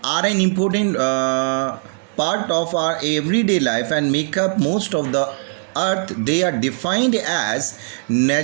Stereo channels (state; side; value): silent; left; digital silence